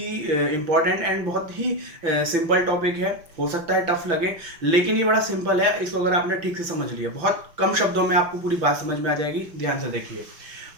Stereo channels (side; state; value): left; late; 5.9 ms